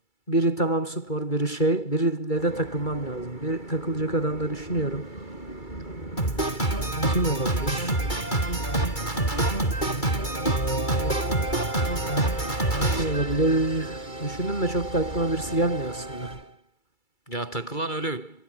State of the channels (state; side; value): late; right; 2.3 ms